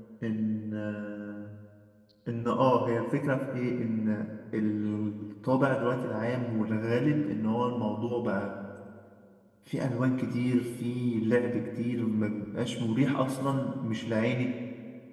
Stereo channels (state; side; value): identical; both; correlation 1.00